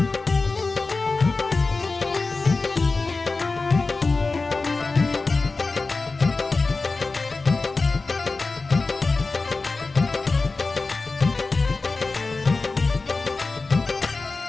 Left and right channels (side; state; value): right; quieter; 3.8 dB